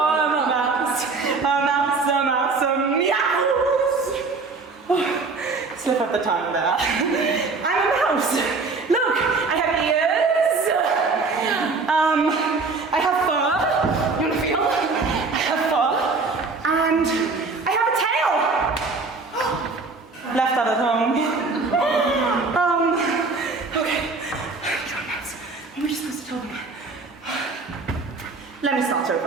a mouse, meows. Oh, slip up the tongue there. I'm a mouse. Look, I have ears. I have fur. You wanna feel? I have fur. And I have a tail. Left out at home. Okay. You're a mouse. What were you supposed to tell them? Let me start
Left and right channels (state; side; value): quieter; left; 4.1 dB